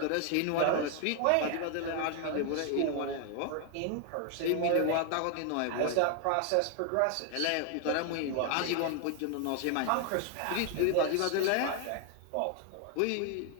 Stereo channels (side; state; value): both; different; correlation 0.00